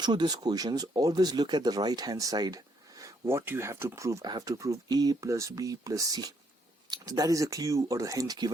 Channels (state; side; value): normal; both; correlation 0.71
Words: these questions, always look at the right hand side. What you have to prove? I have to prove a plus b plus c. So that is a clue or a hint